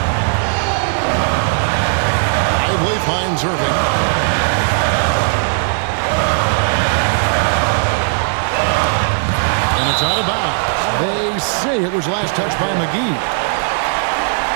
Lively finds Irving. And it's out of bounds. They say it was last touched by McGee.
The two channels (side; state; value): left; silent; 69 dB below the other